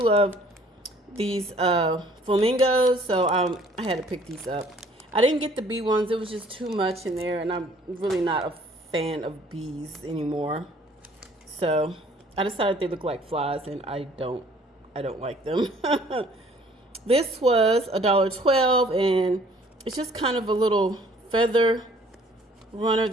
these flamingos, so I had to pick these up. I didn't get the bee ones. It was just too much in there, and I'm really not a fan of bees anymore. So I decided they look like flies, and I don't like them. This was $1.12, and it's just kind of a little feather runner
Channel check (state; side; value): normal; both; correlation 0.57